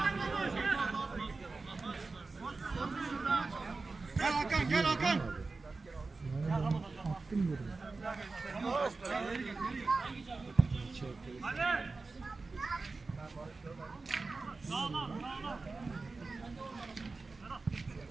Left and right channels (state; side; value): quieter; left; 3.8 dB